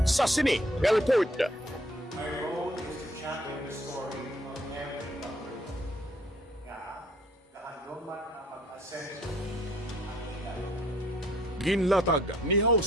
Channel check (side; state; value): both; normal; correlation 0.61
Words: sa sini nga report. My role is to champion the story of every Bacolod. Nga, kahandong man ang mag-asenso ang ilan. Ginlatag ni